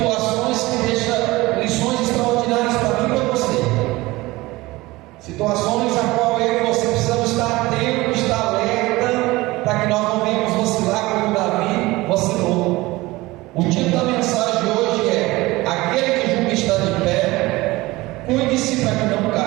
que deixam lições extraordinárias para mim e para você. Situações a qual eu e você precisamos estar atentos, estar alerta, para que nós não venhamos vacilar como Davi vacilou. O título da mensagem de hoje é: aquele que julga estar de pé, cuide-se para que não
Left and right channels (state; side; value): quieter; left; 20.3 dB